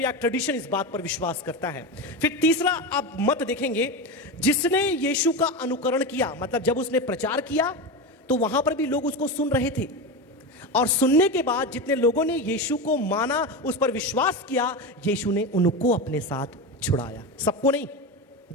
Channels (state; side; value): normal; both; correlation 0.20